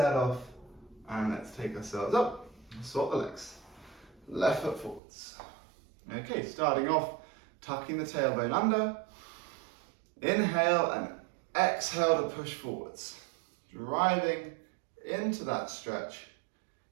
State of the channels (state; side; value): drops out; left; at 5.0 s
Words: off and let's take ourselves up. Swap the legs. Left foot forwards. Okay, starting off, tucking the tailbone under. Inhale and exhale to push forwards. Driving into that stretch.